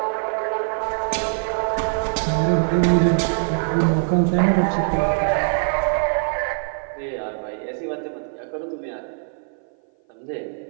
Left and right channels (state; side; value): silent; left; 57 dB below the other